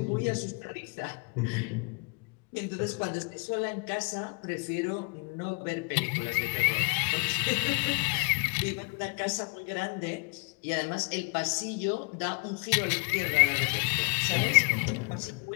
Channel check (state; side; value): quieter; right; 34.3 dB